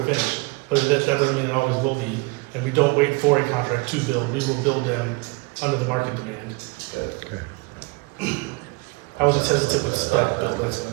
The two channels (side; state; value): left; quieter; 26.6 dB